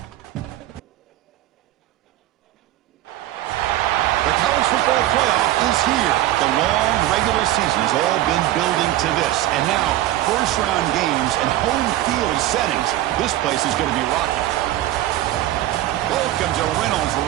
The college football playoff is here. The long regular season has all been building to this. And now, first-round games and home field settings. This place is going to be rocking. Welcome to Reynolds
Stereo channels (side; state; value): left; quieter; 14.6 dB